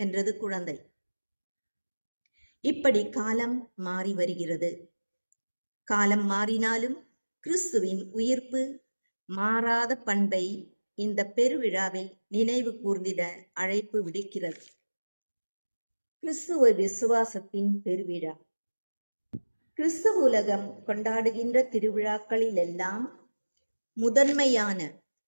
என்றது குழந்தை. இப்படி காலம் மாறி வருகிறது. காலம் மாறினாலும் கிறிஸ்துவின் உயிர்ப்பு மாறாத பண்பை இந்த பெருவிழாவில் நினைவு கூர்ந்திட அழைப்பு விடுக்கிறது. கிறிஸ்துவ விசுவாசத்தின் பெருவிழா. கிறிஸ்துவ உலகம் கொண்டாடுகின்ற திருவிழாக்களிலெல்லாம் முதன்மையான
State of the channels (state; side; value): inverted; both; correlation -1.00